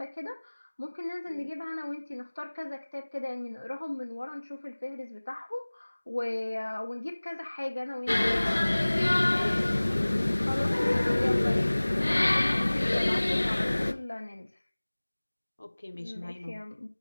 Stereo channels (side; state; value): both; inverted; correlation -1.00